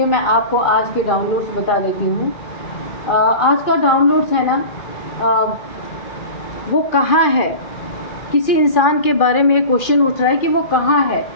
मैं आपको आज के डाउनलोड्स बता देती हूँ। आज का डाउनलोड्स है ना, वो कहाँ है, किसी इंसान के बारे में क्वेश्चन उठ रहा है कि वो कहाँ है,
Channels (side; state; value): right; late; 2.4 ms